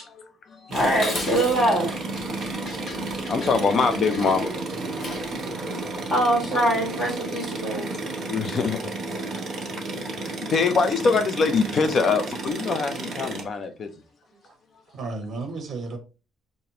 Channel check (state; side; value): normal; both; correlation 0.66